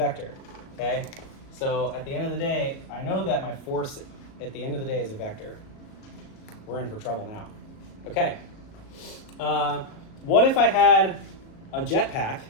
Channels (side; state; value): right; late; 37 ms